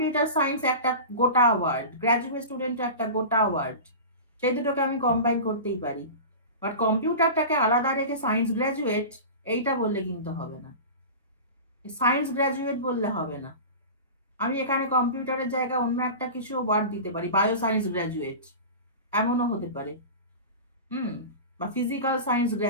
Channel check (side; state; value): both; inverted; correlation -0.31